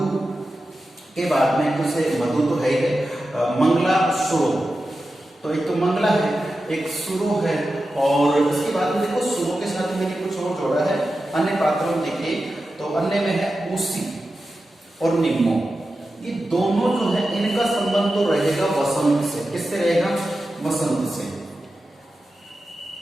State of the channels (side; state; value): both; normal; correlation 0.92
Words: के बाद में, कुछ मधु तो है ही, मंगला सुरो। तो एक तो मंगला है, एक सुरो है, और उसके बाद में देखो सुरो के साथ मैंने कुछ और जोड़ा है अन्य पात्रों में। देखिए तो अन्य में है उसी और निम्मो। ये दोनों जो है इनका संबंध तो रहेगा वसंत से। किससे रहेगा? वसंत से।